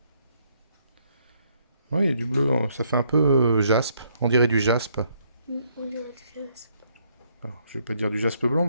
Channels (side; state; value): both; inverted; correlation -0.70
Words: Oui, il y a du bleu, hein. Ça fait un peu jaspe. On dirait du jaspe. On dirait du jaspe. Alors, je vais pas dire du jaspe blanc